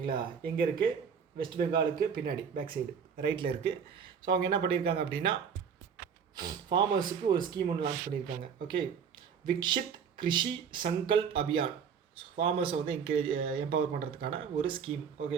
எங்கே இருக்குது? வெஸ்ட் பெங்காலுக்கு பின்னாடி பேக் சைடு ரைட்டில் இருக்குது. ஸோ அவங்க என்ன பண்ணியிருக்காங்க அப்படின்னா ஃபார்மர்ஸுக்கு ஒரு ஸ்கீம் ஒன்று லான்ச் பண்ணியிருக்காங்க. ஓகே, விக்ஷித் கிருஷி சங்கல்ப் அபியான். ஃபார்மர்ஸை வந்து எம்பவர் பண்ணுறதுக்கான ஒரு ஸ்கீம்.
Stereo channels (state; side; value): quieter; left; 6.9 dB